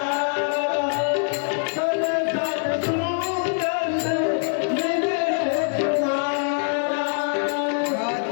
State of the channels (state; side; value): silent; right; digital silence